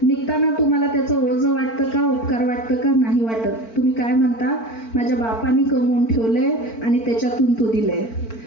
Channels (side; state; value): right; late; 4.4 ms